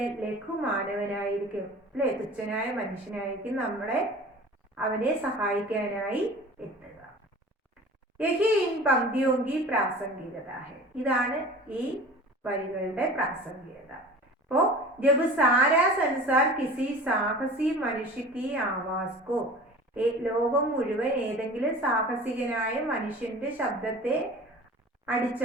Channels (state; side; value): normal; both; correlation 0.40